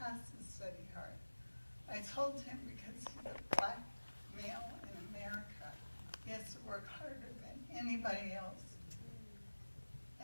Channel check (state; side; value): inverted; both; correlation -1.00